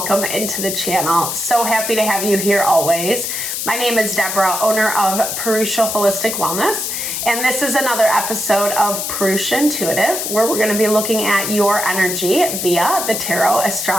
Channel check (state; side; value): noise; left; hiss, 3 dB below the sound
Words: into the channel. So happy to have you here always. My name is Deborah, owner of Purusha Holistic Wellness, and this is another episode of Purusha Intuitive, where we're going to be looking at your energy via the tarot,